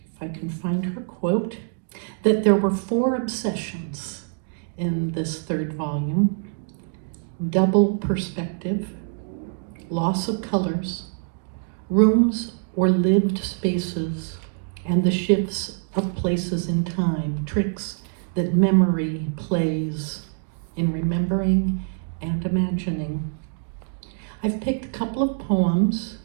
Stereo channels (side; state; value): left; silent; 62 dB below the other